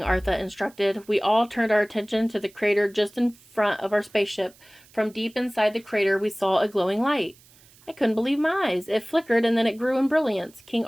Arthur instructed. We all turned our attention to the crater just in front of our spaceship. From deep inside the crater, we saw a glowing light. I couldn't believe my eyes. It flickered and then it grew in brilliance. "King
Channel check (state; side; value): noise; right; hiss, 27 dB below the sound